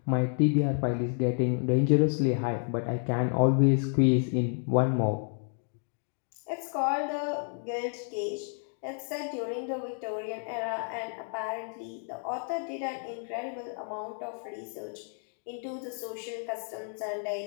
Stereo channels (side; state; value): right; silent; 57 dB below the other